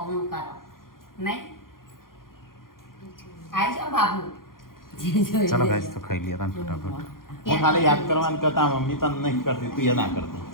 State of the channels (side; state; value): right; late; 0.91 ms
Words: હું કરો નહીં આવી જાઓ બાબુ ચલો ગાઈસ તો ખાઈ લઈએ તાન ફટાફટ હું ખાલી યાદ કરવાનું કરતા મમ્મી તને નહીં કરતી તું એ ના કરતી